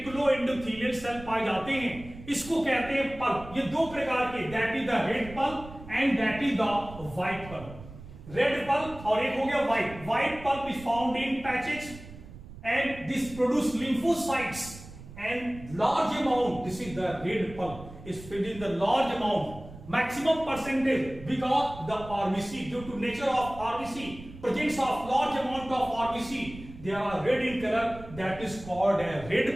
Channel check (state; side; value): noise; right; rumble, 16 dB below the sound